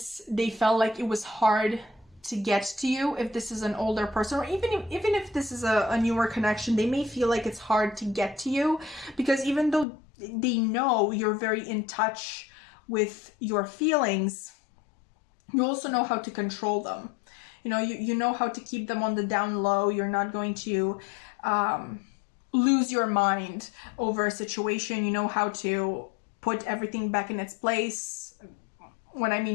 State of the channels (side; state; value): right; drops out; at 9.9 s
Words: they felt like it was hard to get to you. If this is an older person, or even if this is a newer connection, they may feel like it's hard to get to you, because even though they know you're very in touch with your feelings, you also know how to control them. You know, you know how to keep them on the down low. You're not going to lose your mind over a situation. You know how to put everything back in its place. When I